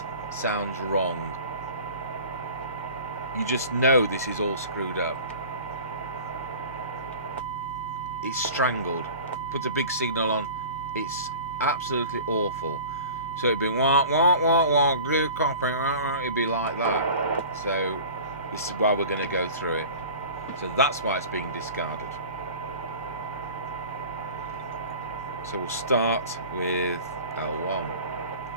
sounds wrong. You just know this is all screwed up. It's strangled. Put a big signal on. It's absolutely awful. So it'd be wah wah wah wah glue copy. It'd be like that. So this is why we're going to go through it. So that's why it's being discarded. So we'll start with L1.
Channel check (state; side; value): inverted; both; correlation -0.40